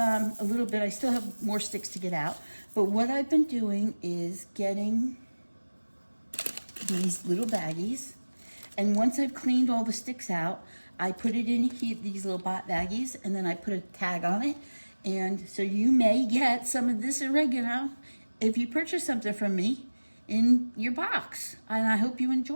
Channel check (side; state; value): both; inverted; correlation -1.00